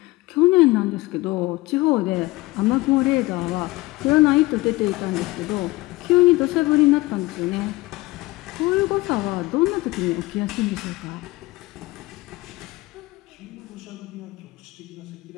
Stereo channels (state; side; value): quieter; right; 20.5 dB